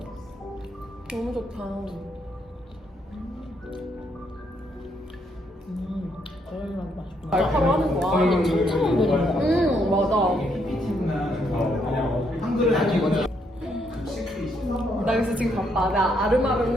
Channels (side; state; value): both; normal; correlation 0.74